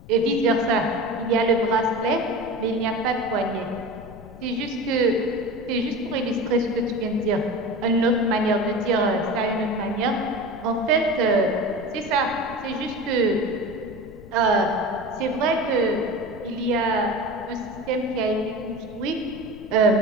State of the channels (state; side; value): noise; left; rumble, 18 dB below the sound